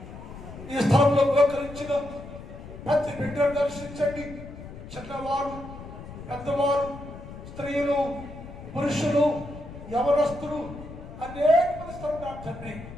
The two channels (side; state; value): left; noise; rumble, 13 dB below the sound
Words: ఈ స్థలంలో ఉపకరించిన ప్రతి బిడ్డను దర్శించండి. చిన్నవారు, పెద్దవారు, స్త్రీలు, పురుషులు, యవనస్తులు, అనేక మంది స్థలం తండ్రి.